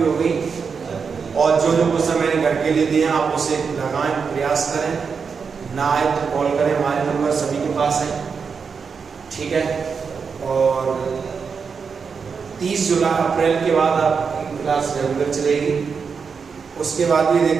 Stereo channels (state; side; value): quieter; left; 5.7 dB